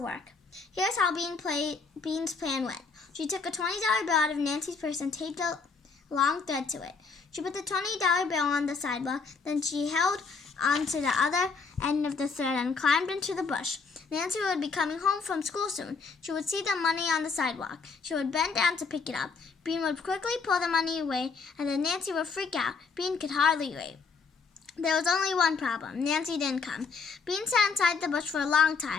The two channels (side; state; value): right; quieter; 4.9 dB